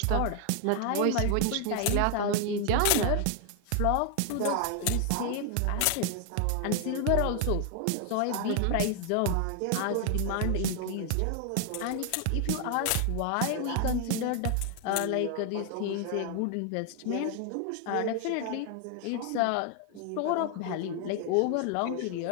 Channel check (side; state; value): both; different; correlation 0.00